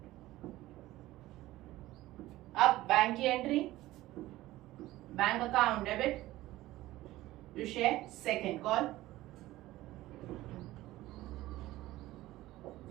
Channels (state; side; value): quieter; left; 16.7 dB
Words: अब बैंक की entry bank account debit to share second call